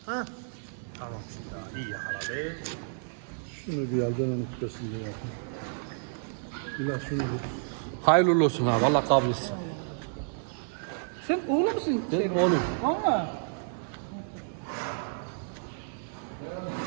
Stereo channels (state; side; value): silent; left; 58 dB below the other